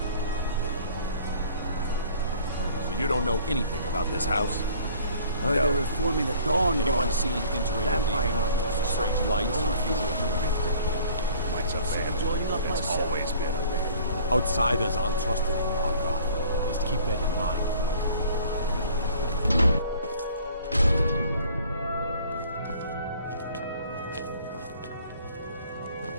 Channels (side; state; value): both; inverted; correlation -0.53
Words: So you don't know anything about this house? They're reforming the dawn. Anyone seen entering or leaving? Strange lights or unusual It's a bad. It's always been a bad. Outsiders aren't trusted in Markarth. Just keep that in mind.